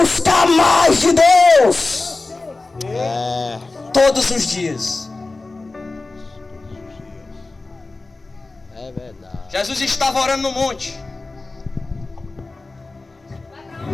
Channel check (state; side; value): quieter; right; 3.4 dB